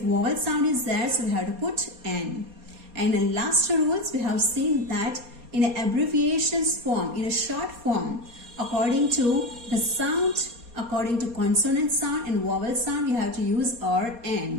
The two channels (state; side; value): late; left; 4.2 ms